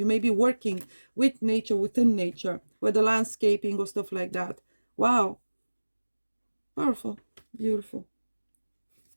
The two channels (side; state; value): both; inverted; correlation -1.00